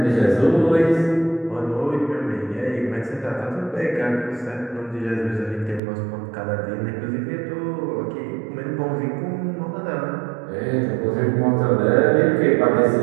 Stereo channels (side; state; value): left; drops out; at 5.8 s